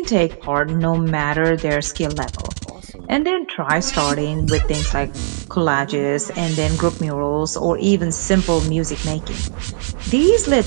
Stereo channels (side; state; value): left; silent; digital silence